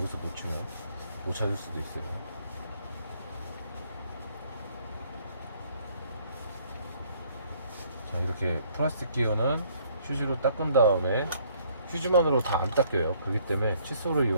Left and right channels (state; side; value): inverted; both; correlation -0.63